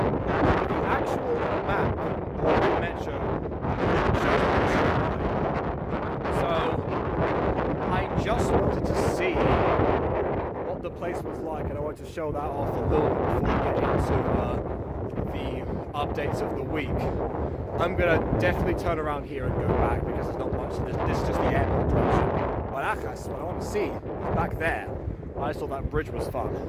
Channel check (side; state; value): both; identical; correlation 1.00